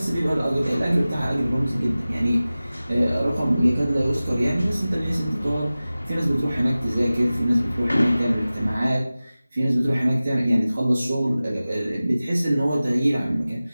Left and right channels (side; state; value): both; inverted; correlation -0.97